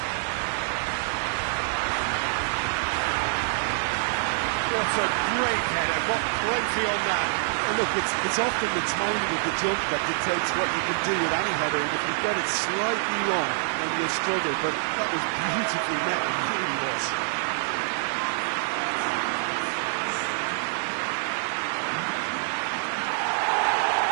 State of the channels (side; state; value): left; silent; digital silence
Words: What a great header, got plenty on that. And look, it's often the timing of the jump that dictates what you can do with any header, and if you get it slightly wrong, then you'll struggle, but that was beautifully met, it really was.